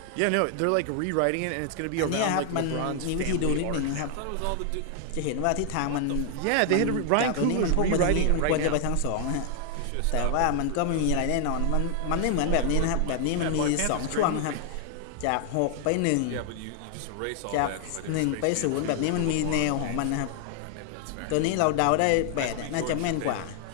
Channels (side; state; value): both; different; correlation 0.00